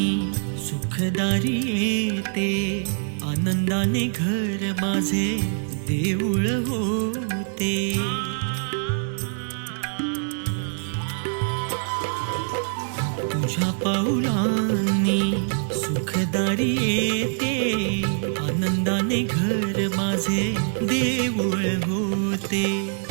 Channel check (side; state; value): left; silent; digital silence